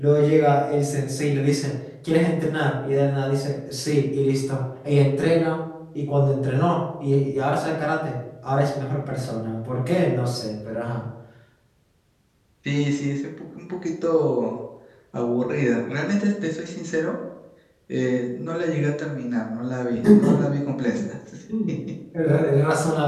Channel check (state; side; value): identical; both; correlation 1.00